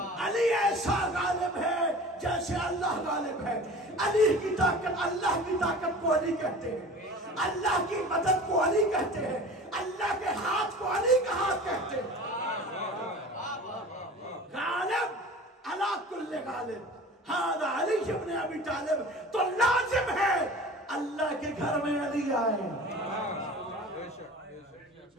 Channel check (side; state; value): both; normal; correlation 0.40